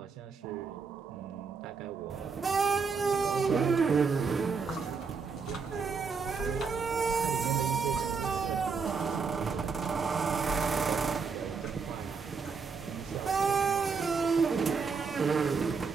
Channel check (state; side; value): quieter; left; 5.2 dB